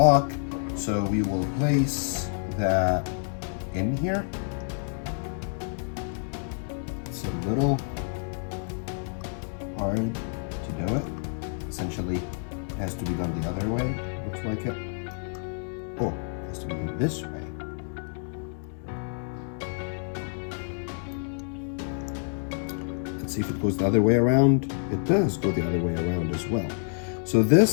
So we will place that in here. It's a little hard to do it. Essentially, it has to be done the other way, looks like it. Oh, it has to be done this way. Let's see if it goes the other way around. It does go the other way around as well. So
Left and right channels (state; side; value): silent; right; 59 dB below the other